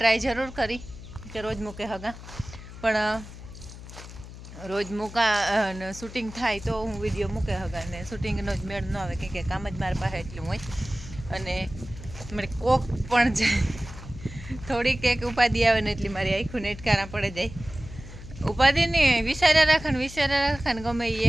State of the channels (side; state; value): left; noise; hum, 14 dB below the sound